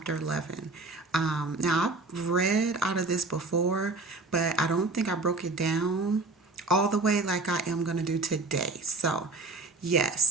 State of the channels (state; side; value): quieter; left; 3.4 dB